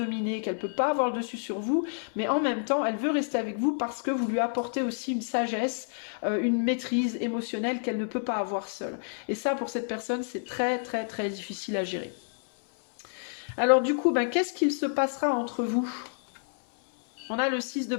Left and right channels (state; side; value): silent; right; 59 dB below the other